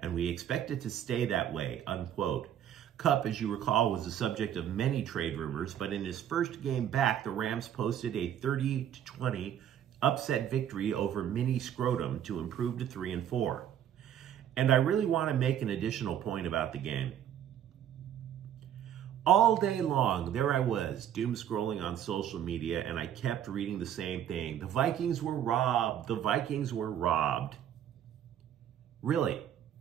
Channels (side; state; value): left; quieter; 10.2 dB